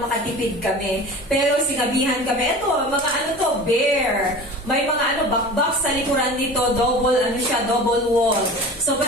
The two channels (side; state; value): both; normal; correlation 0.37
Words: makatipid kami. Pero sinabihan kami, eto, mga ano to, bare. May mga bakbak sa likuran nito, double wall. So